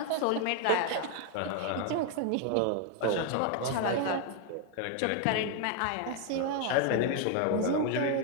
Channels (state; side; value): different; both; correlation 0.01